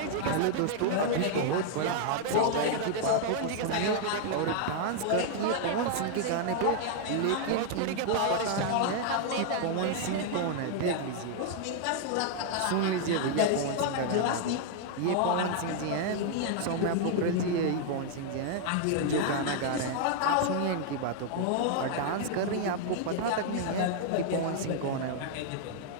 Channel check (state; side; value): different; both; correlation 0.00